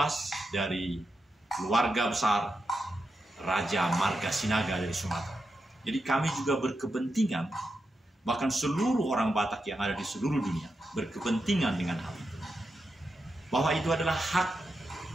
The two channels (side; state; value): both; normal; correlation 0.87